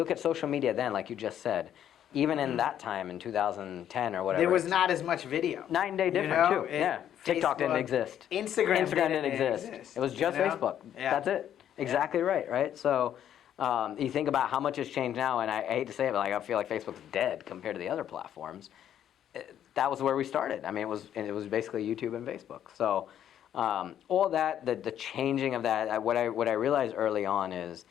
at social media then, like you just said, even in that time, in 2010 or whatever. There was not as much video. Night and day different, too. Yeah. TikTok didn't exist. Instagram didn't exist. It was just Facebook. Yeah. That's it. Exactly right? So you think about how much has changed now, and I hate to say it, but I feel like Facebook's dead compared to the other platforms. That was where we started. I mean, it was basically YouTube and Facebook. So all that, the changing of that, what I realized early on is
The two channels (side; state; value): right; quieter; 10.3 dB